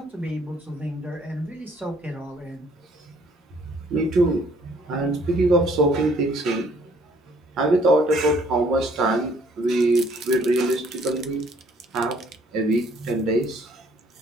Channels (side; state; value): both; normal; correlation 0.61